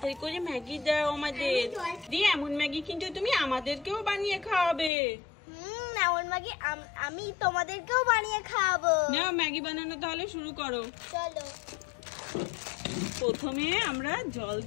করে ম্যাগি দাও আমাদের। দিয়ে এমন ম্যাগি কিন্তু তুমি আমাদেরকেও বানিয়ে খাওয়াবে। এমন ম্যাগি আমি তোমাদেরকেও বানিয়ে খাওয়াবো। নাও ম্যাগি বানানো তাহলে শুরু করো। চলো। প্রথমে আমরা জল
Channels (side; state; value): right; drops out; at 4.9 s